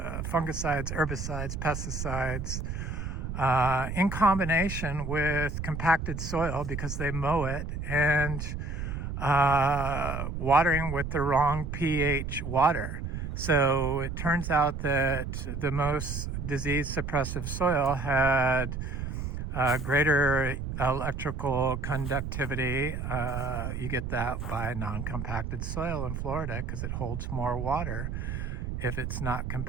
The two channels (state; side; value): noise; right; rumble, 4 dB below the sound